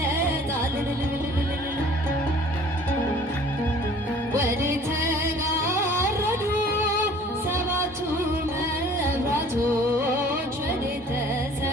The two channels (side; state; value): both; normal; correlation 0.51